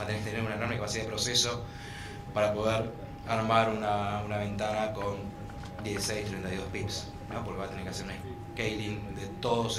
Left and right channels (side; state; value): both; identical; correlation 1.00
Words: a tener una enorme capacidad de proceso para poder armar una ventana con 16, 32 pips, ¿no? Porque va a tener que hacer un scaling de todos